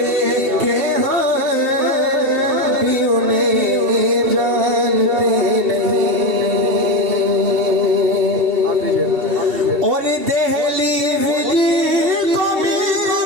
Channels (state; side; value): late; left; 2.7 ms